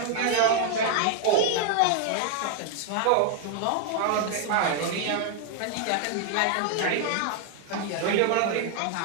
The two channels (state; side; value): different; both; correlation 0.00